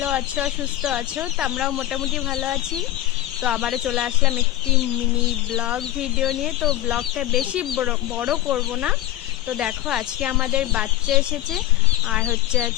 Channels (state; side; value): quieter; right; 14.3 dB